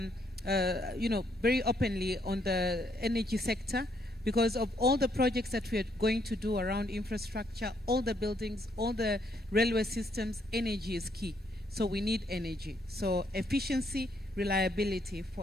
very openly on the energy sector. because of all the projects that we are going to do around infrastructure, all the buildings, all the railway systems, energy is key. So we need energy. So efficiency, reliability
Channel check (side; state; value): both; normal; correlation 0.72